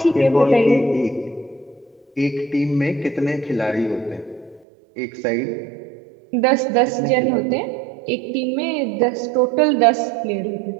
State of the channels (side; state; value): left; drops out; at 4.7 s